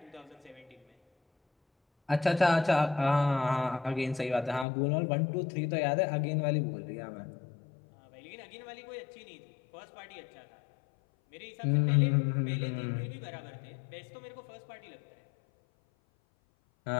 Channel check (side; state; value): right; drops out; at 4.7 s